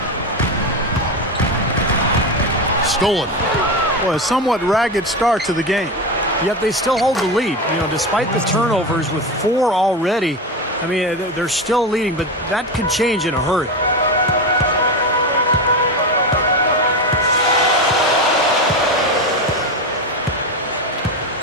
Stolen. Well, a somewhat ragged start to the game. Yet they still hold the lead. You know, despite the turnovers with 4 already, I mean, they're still leading, but that could change in a hurry.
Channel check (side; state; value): both; normal; correlation 0.18